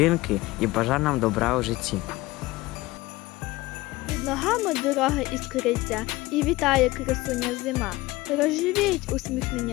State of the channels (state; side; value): quieter; right; 19.6 dB